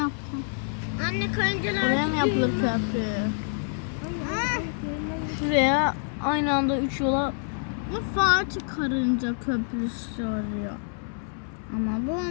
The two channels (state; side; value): silent; right; 60 dB below the other